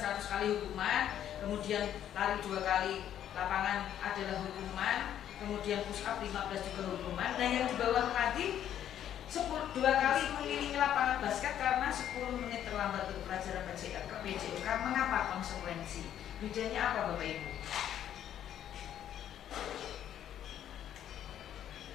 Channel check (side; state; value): right; quieter; 10.6 dB